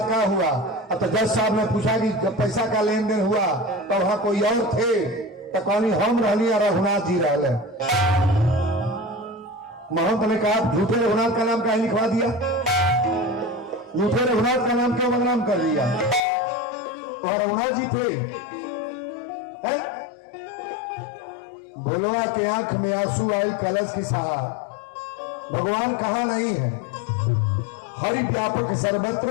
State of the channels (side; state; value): right; drops out; at 16.2 s